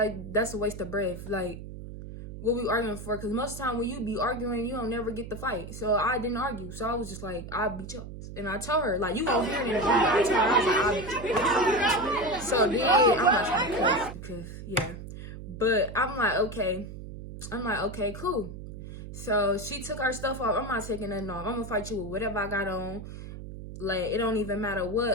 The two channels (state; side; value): noise; right; hum, 11 dB below the sound